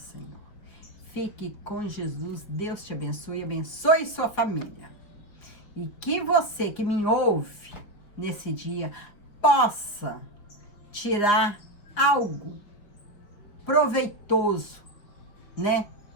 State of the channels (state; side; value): late; right; 5.1 ms